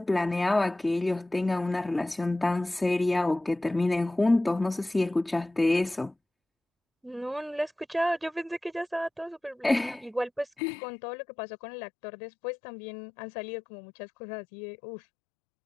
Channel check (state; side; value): drops out; right; at 10.5 s